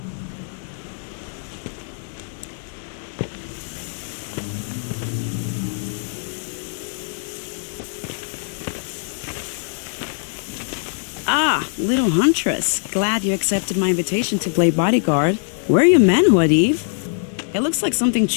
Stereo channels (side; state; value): right; silent; digital silence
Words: Ah, little huntress. Glad you accepted my invitation to play bodyguard. Where are your men, Wadif? It looks like something